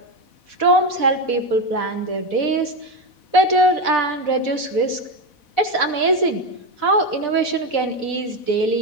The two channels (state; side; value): late; right; 4.1 ms